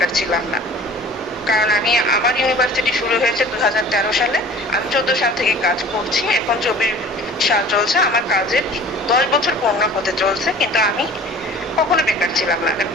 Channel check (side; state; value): both; normal; correlation 0.46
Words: ছিলাম না, কারণ আমার ইউনিভার্সিটি শুরু হয়েছে 2013 সালে। আমি 14 সাল থেকে কাজ করছি, এখন 24 সাল চলছে, আমার কাজের 10 বছর পূর্ণ হতে চলছে, কিন্তু আমি কখনো বেকার ছিলাম না।